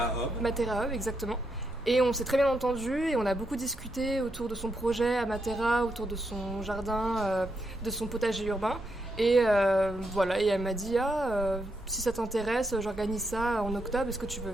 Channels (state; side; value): normal; both; correlation 0.81